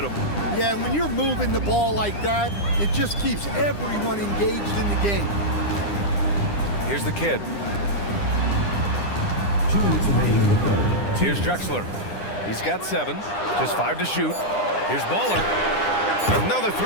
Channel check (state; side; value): late; right; 9.9 ms